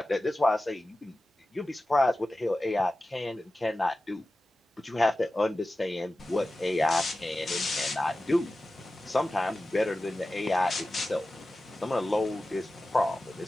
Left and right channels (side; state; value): both; normal; correlation 0.95